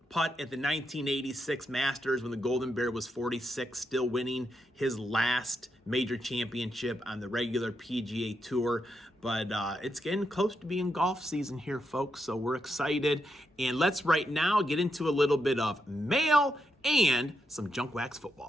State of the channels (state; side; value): normal; both; correlation 0.83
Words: at the 1986 Masters when the Golden Bear was 46, still winning his last major championship on the regular PGA Tour. But it's getting close to being golf season here, folks, so we're excited. And let's right now get into a little bit of mail and some junk wax